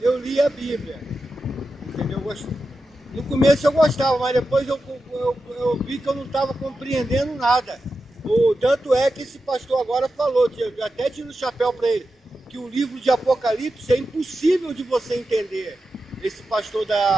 eu li a Bíblia. Entendeu? No começo eu gostava, mas depois eu vi que eu não estava compreendendo nada. Tanto é que esse pastor agora falou, eu até tiro o chapéu para ele, que o livro de Apocalipse é impossível de você entender. Esse pastor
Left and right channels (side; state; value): both; normal; correlation 0.91